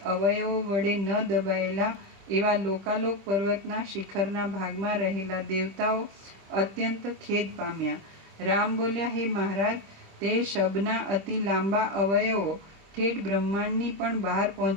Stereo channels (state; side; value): late; left; 26 ms